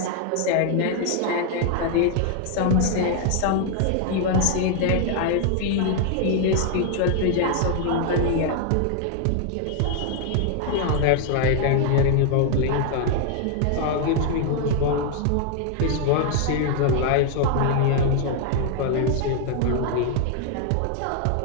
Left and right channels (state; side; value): different; both; correlation 0.00